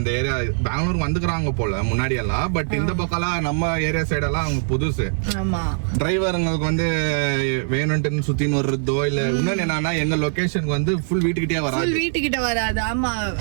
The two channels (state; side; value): silent; left; 58 dB below the other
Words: ஏரியா. பெங்களூர் வந்துக்கிறாங்க போல முன்னாடி எல்லாம், பட் இந்த பக்கம்லாம் நம்ம ஏரியா சைடெல்லாம் அவங்க புதுசு. ஆமா, டிரைவருங்களுக்கு வந்து வேணும்னு சுத்தின்னு வர்றதோ இல்ல இன்னொன்னு என்னன்னா, எங்க லொகேஷனுக்கு வந்து ஃபுல் வீட்டுக்கிட்டே வராது. ஆமா,